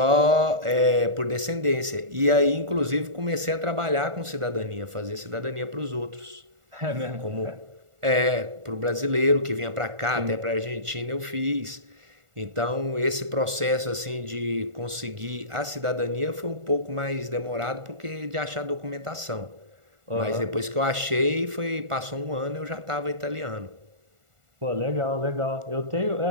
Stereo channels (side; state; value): left; late; 1.4 ms